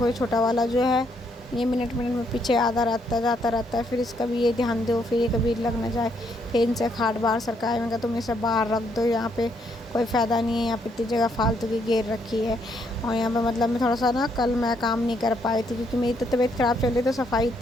ये छोटा वाला जो है, ये मिनट मिनट में पीछे आधा जाता रहता है। फिर इसका भी ये ध्यान दो, फिर ये कभी लग ना जाए। फिर इनसे खाट बाहर सरकाए, मैं कहा तुम इसे बाहर रख दो, यहाँ पे कोई फ़ायदा नहीं है, यहाँ पे इतनी जगह फालतू की घेर रखी है। और यहाँ पे मतलब मैं थोड़ा सा ना, कल मैं काम नहीं कर पाई थी क्योंकि मेरी तो तबीयत ख़राब चल रही, तो सफाई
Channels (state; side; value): normal; both; correlation 0.73